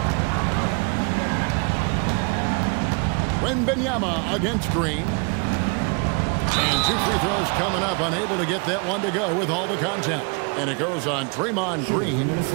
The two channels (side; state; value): left; quieter; 33.2 dB